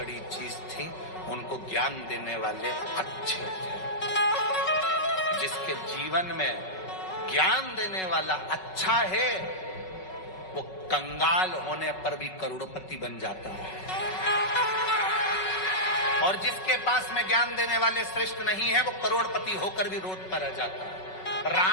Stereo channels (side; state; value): right; late; 5.3 ms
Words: चीज थी, उनको ज्ञान देने वाले अच्छे थे। जिसके जीवन में ज्ञान देने वाला अच्छा है, वो कंगाल होने पर भी करोड़पति बन जाता है। और जिसके पास में ज्ञान देने वाले श्रेष्ठ नहीं है, वो करोड़पति होकर भी रोड पर आ जाता है।